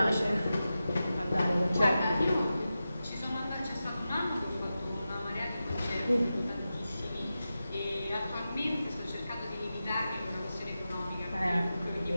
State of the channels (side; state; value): both; inverted; correlation -0.92